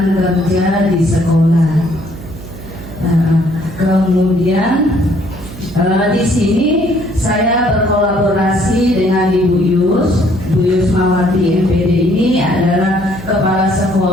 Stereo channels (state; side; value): noise; right; hum, 14 dB below the sound